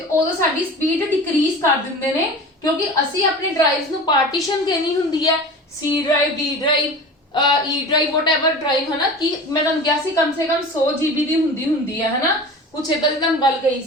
ਉਦੋਂ ਸਾਡੀ ਸਪੀਡ ਡਿਕਰੀਜ਼ ਕਰ ਦਿੰਦੇ ਨੇ, ਕਿਉਂਕਿ ਅਸੀਂ ਆਪਣੇ ਡਰਾਈਵਸ ਨੂੰ ਪਾਰਟੀਸ਼ਨ ਦੇਣੀ ਹੁੰਦੀ ਹੈ। ਸੀ ਡਰਾਈਵ, ਡੀ ਡਰਾਈਵ, ਈ ਡਰਾਈਵ, ਵਟਐਵਰ ਡਰਾਈਵ, ਹਨਾ। ਕਿ ਮੈਂ ਤੁਹਾਨੂੰ ਕਿਹਾ ਸੀ ਕਮ ਸੇ ਕਮ 100 GB ਦੀ ਹੁੰਦੀ ਹੈ ਹਨਾ। ਕੁਛ ਏਦਾਂ ਦੀ ਤੁਹਾਨੂੰ ਗੱਲ ਕਹੀ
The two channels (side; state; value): both; normal; correlation 0.35